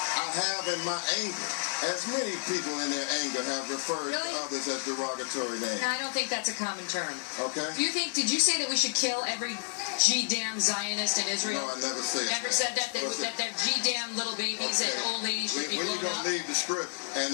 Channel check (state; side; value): silent; right; 58 dB below the other